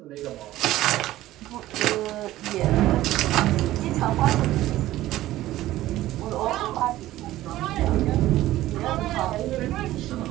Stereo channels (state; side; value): quieter; left; 15.3 dB